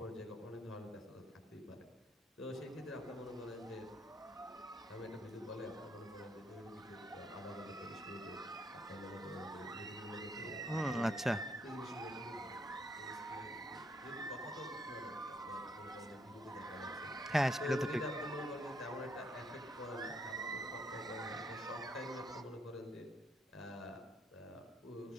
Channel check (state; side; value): normal; both; correlation 0.72